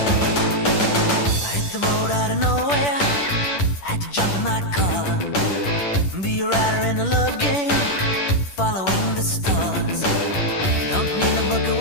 I hit the road out of nowhere, had to jump in my car, be a rider in a love game, following the stars. Don't need a book of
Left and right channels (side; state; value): right; late; 10 ms